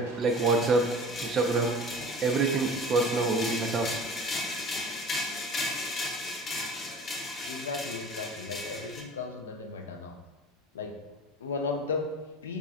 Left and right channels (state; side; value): normal; both; correlation 0.40